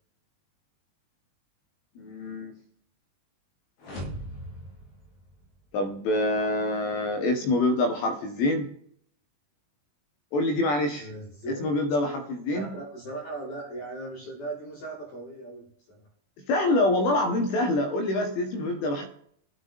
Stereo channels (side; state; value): right; late; 21 ms